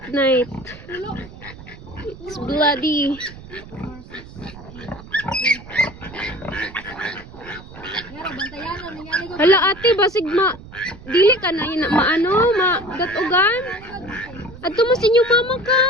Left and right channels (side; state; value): right; noise; rumble, 17 dB below the sound